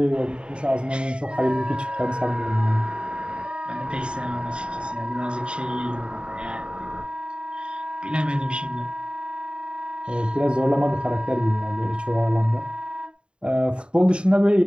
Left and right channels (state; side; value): late; left; 0.052 ms